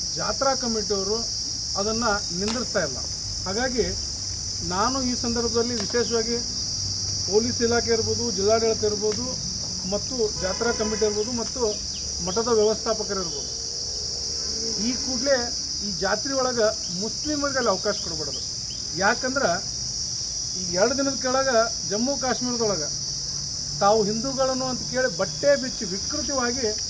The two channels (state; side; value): identical; both; correlation 1.00